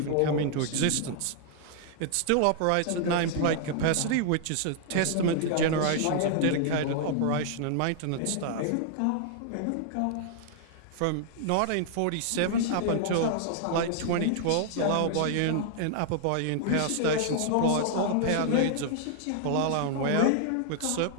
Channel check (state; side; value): different; both; correlation -0.01